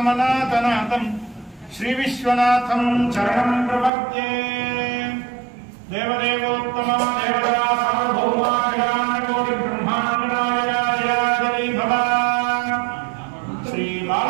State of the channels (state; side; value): drops out; left; at 3.9 s